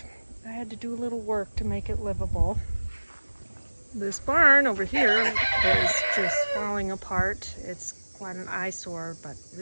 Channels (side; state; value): both; inverted; correlation -1.00